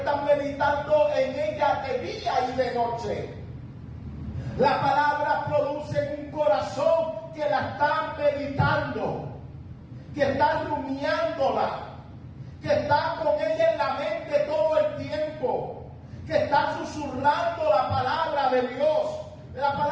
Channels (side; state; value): both; identical; correlation 1.00